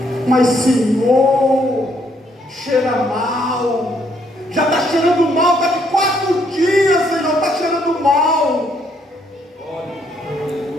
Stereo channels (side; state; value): both; normal; correlation 0.70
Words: Mas Senhor, cheira mal, já está cheirando mal, está de 4 dias, Senhor, está cheirando mal.